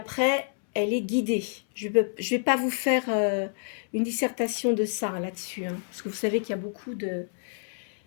elle est guidée. Je vais pas vous faire une dissertation de ça là-dessus, hein, parce que vous savez qu'il y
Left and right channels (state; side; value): silent; right; 59 dB below the other